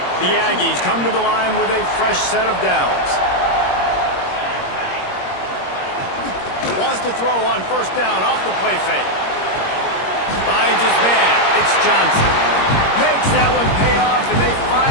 The Aggies come to the line with a fresh set of downs. Wants to throw on first down off the play fake. Finds his man. It's Johnson. Makes that one pay off, and they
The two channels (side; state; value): right; late; 21 ms